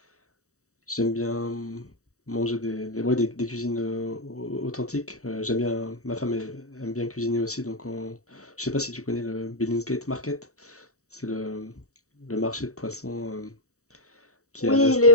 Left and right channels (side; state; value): right; late; 0.65 ms